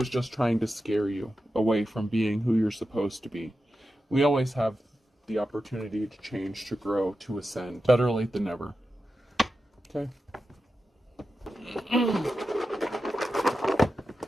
just trying to scare you away from being who you're supposed to be. We always have the opportunity to change, to grow, to ascend. Better late than never. Okay?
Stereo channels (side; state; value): both; normal; correlation 0.91